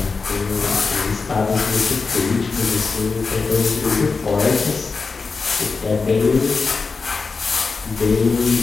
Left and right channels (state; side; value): quieter; right; 4.5 dB